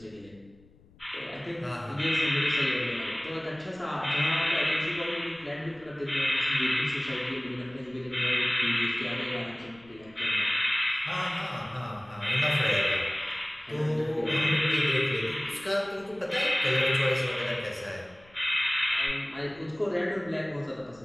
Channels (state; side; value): noise; left; rumble, 27 dB below the sound